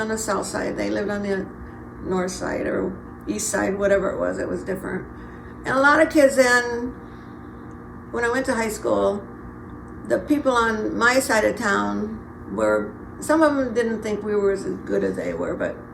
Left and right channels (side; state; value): both; identical; correlation 1.00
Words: the south side. They lived on the north side or east side, whatever it was different. And a lot of kids then, when I went to high school, the people on my side of town some of them didn't think we were as good as they were, but